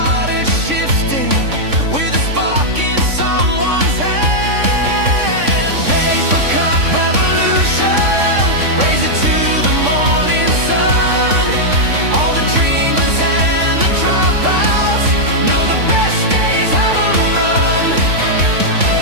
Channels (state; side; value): late; left; 3.5 ms